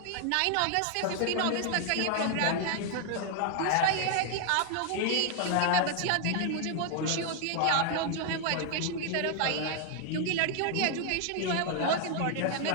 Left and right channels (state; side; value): different; both; correlation 0.00